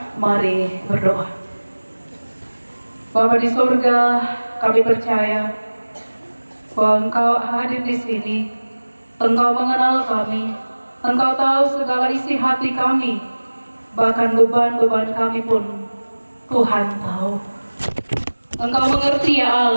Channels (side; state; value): both; inverted; correlation -1.00